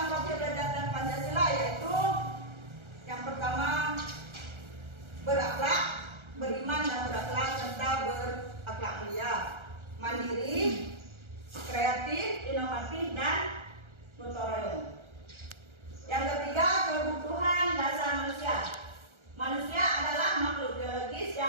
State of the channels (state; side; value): late; left; 1.3 ms